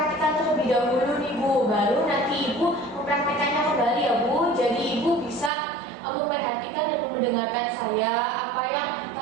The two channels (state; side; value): drops out; left; at 5.5 s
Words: terlebih dahulu nih Bu, baru nanti Ibu mempraktikannya kembali ya Bu. Jadi Ibu bisa memperhatikan dan mendengarkan saya apa yang